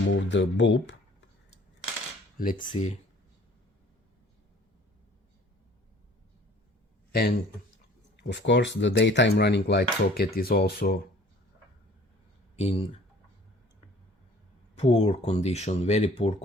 the bulb. Let's see. And of course, the daytime running light socket is also in poor condition, very poor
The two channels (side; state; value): both; normal; correlation 0.52